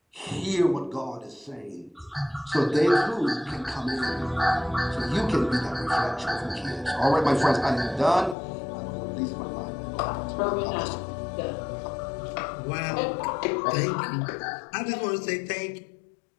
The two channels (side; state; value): right; drops out; at 8.3 s